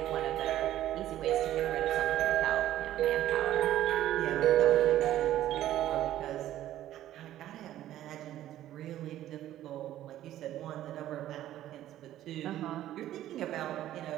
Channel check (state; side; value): quieter; left; 13.1 dB